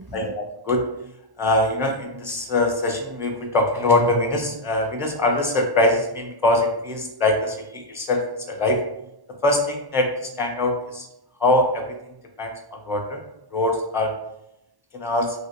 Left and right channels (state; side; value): late; left; 1.1 ms